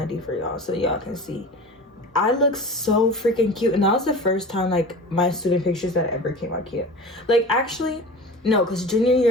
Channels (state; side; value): normal; both; correlation 0.35